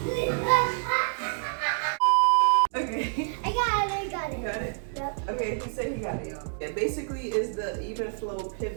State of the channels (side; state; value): left; silent; digital silence